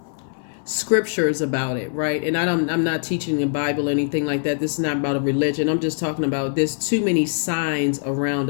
scriptures about it, right? And I'm not teaching the Bible or anything like that. This is not about a religion. I'm just talking about, there's too many signs around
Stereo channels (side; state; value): right; silent; 62 dB below the other